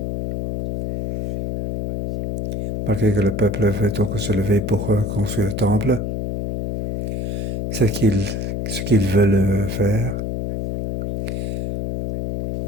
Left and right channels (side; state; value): left; noise; hum, 3 dB below the sound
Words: malgré que le peuple veut donc se lever pour construire le temple, ce qu'ils veulent faire,